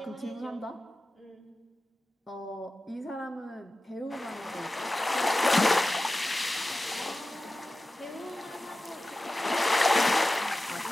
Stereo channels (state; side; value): normal; both; correlation 0.94